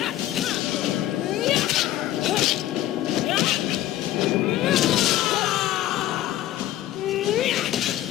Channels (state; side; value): quieter; right; 14.0 dB